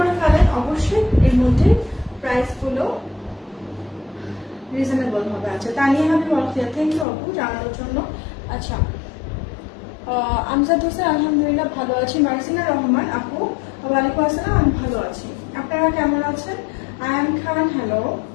ফেলেন অবশ্যই। এর মধ্যে প্রাইস গুলো রিজনেবল হবে। আচ্ছা, তানিয়া হাবিব অলখিয়া, থ্যাংক ইউ আপু জানানোর জন্য। আচ্ছা, আমজাদ হোসেন আলহামদুলিল্লাহ ভালো আছি। মার্জিনা রহমান আপু, ওয়ালাইকুম আসসালাম, আমি ভালো আছি। আপনারা কেমন আছেন? আয়ান খান, হ্যালো।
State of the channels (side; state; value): right; drops out; at 7.1 s